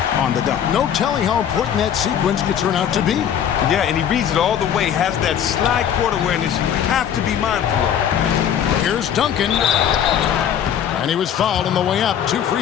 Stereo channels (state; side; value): quieter; right; 9.2 dB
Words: on the dunk. No telling how important that sequence could turn out to be. Yeah, and he reads it all the way, has that slide court awareness you have to be mindful of. Here's Duncan. And he was fouled on the way up. 2 free